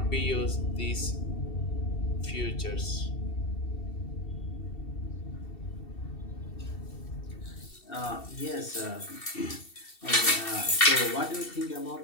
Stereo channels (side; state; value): right; late; 2.7 ms